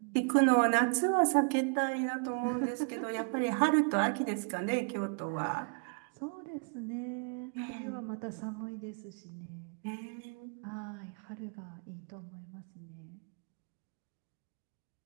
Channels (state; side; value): quieter; left; 38.5 dB